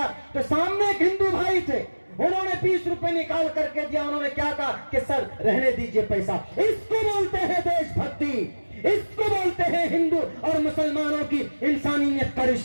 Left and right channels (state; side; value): inverted; both; correlation -1.00